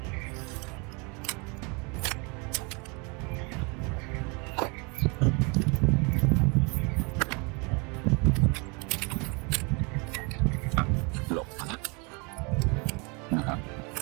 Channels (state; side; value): quieter; left; 31.0 dB